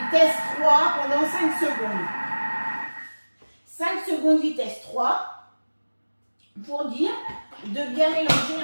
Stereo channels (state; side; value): inverted; both; correlation -1.00